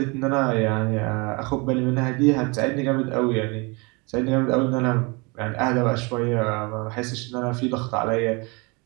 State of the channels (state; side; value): quieter; left; 28.4 dB